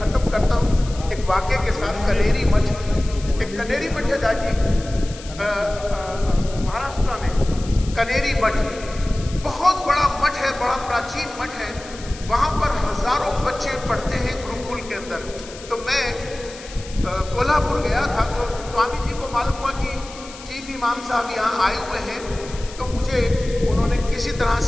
करता हूँ एक वाक्य के साथ। कनेरी मठ, एक कनेरी मठ है दादी, महाराष्ट्र में कनेरी मठ, बहुत बड़ा मठ है, बड़ा प्राचीन मठ है। वहाँ पर हजारों बच्चे पढ़ते हैं गुरुकुल के अंदर। तो मैं कोल्हापुर गया था, तो स्वामी जी को मालूम हुआ कि चीफ इमाम साहब यहाँ आए हुए हैं, तो मुझे उन्होंने किसी तरह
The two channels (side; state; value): left; noise; hiss, 16 dB below the sound